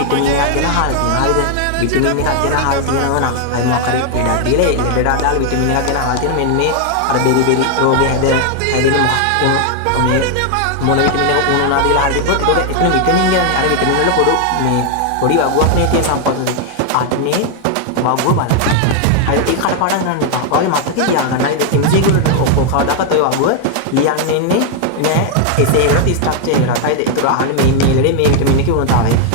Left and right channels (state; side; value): different; both; correlation 0.00